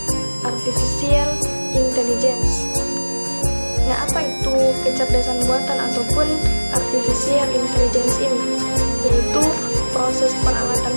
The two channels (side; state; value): both; inverted; correlation -1.00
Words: Nah, apa itu kecerdasan buatan ataupun artificial intelligence ini? Yaitu proses peralatan